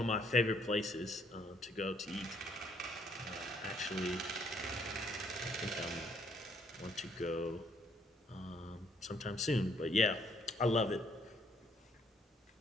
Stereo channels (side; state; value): both; normal; correlation 0.67